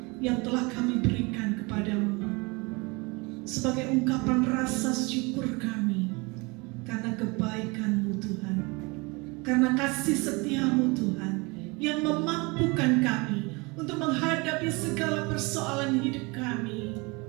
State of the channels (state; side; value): quieter; left; 27.2 dB